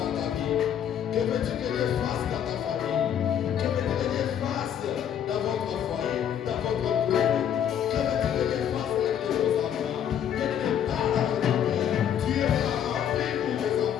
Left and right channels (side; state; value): right; quieter; 9.3 dB